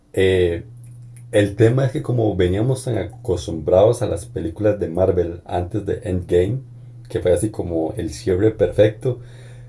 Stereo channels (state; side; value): identical; both; correlation 1.00